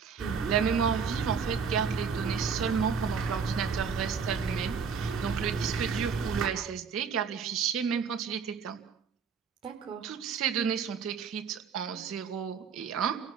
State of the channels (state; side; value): quieter; left; 6.1 dB